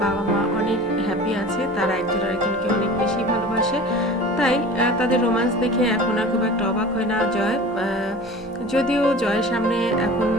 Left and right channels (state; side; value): normal; both; correlation 0.39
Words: বাবা মা অনেক হ্যাপি আছে, তারা একজন আরেকজনকে অনেক বেশি ভালোবাসে। তাই তাদের রোম্যান্স দেখে এখন আর খুব একটা অবাক হয় না জয়। যদিও জয়ের সামনে এখন